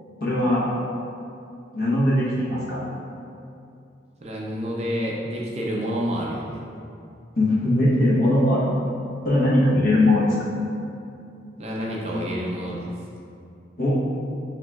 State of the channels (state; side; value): normal; both; correlation 0.76